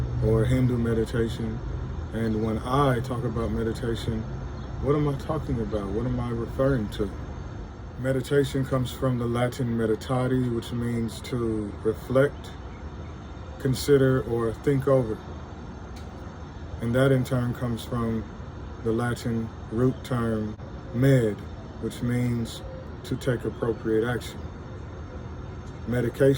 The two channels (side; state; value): both; identical; correlation 1.00